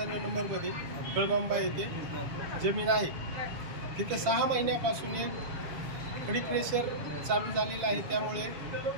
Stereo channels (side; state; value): left; late; 7.1 ms